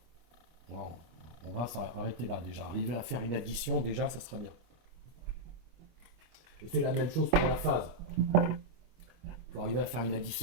on va s'arrêter là déjà. Arriver à faire une addition, déjà, ça sera bien. Et c'est la même chose pour la phase. Il faut arriver à faire une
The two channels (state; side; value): late; left; 25 ms